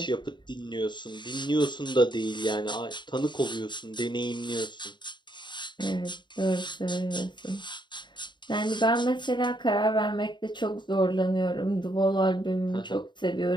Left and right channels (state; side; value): late; right; 0.22 ms